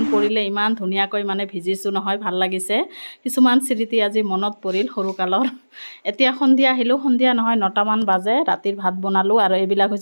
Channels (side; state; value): both; inverted; correlation -1.00